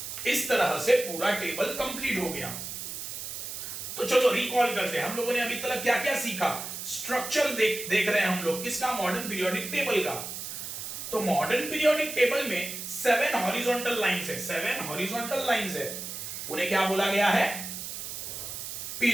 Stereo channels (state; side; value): noise; right; hiss, 7 dB below the sound